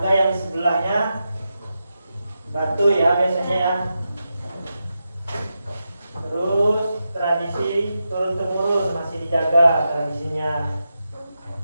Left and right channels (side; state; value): both; inverted; correlation -0.88